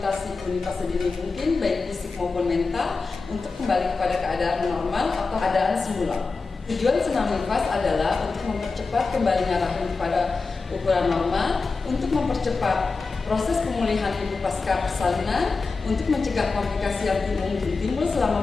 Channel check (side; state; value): right; quieter; 4.2 dB